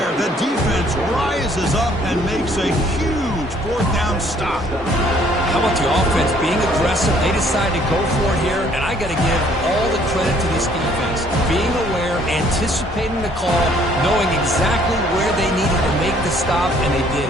The defense rises up and makes a huge 4th down stop. How about the offense being aggressive? They decided to go for it here, and I got to give all the credit to this defense. Being aware, anticipating the call, knowing exactly where they needed to make the stop, and they did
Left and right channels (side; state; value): both; normal; correlation 0.61